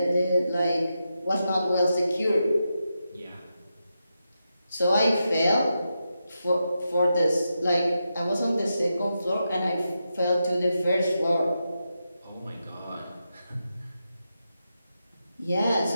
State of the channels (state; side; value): inverted; both; correlation -0.87